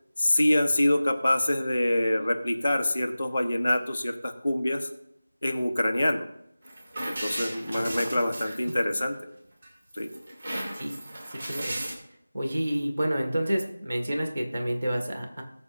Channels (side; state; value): both; inverted; correlation -0.96